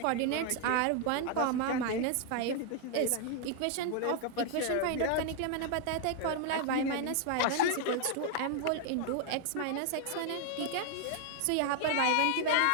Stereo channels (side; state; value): both; different; correlation 0.00